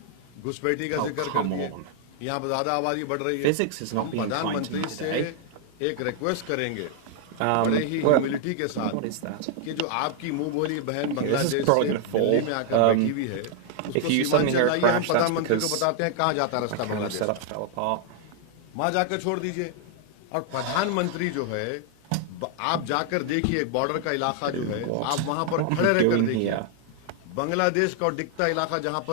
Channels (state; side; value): different; both; correlation 0.00